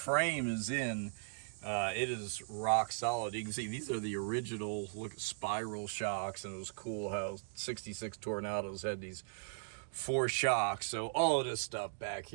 is in, it is rock solid. You can see these are the original spiral shocks, and it was cool how 66 Tornados had these 4 shocks. So all of this stuff back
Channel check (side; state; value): left; silent; digital silence